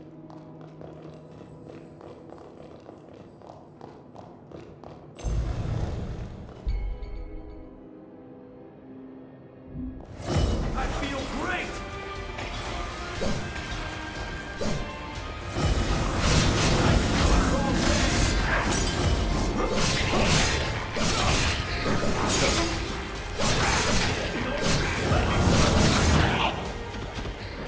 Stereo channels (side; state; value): both; identical; correlation 1.00